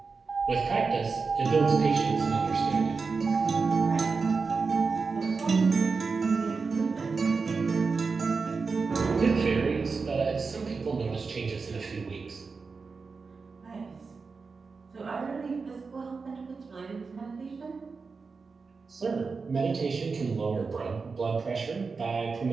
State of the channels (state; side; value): quieter; left; 4.7 dB